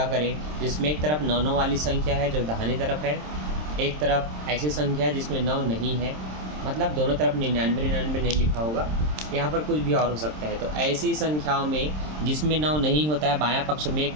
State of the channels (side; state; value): left; late; 26 ms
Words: करें जिसमें एक तरफ 9 9 वाली संख्या है जो दाहिनी तरफ है, एक तरफ ऐसी संख्या है जिसमें 9 नहीं है, मतलब दोनों तरफ 99 99 नहीं लिखा होगा, यहाँ पर कुछ भी और हो सकता है। तो ऐसी संख्याओं में जिसमें 9 नहीं होता है बायां पक्ष में 1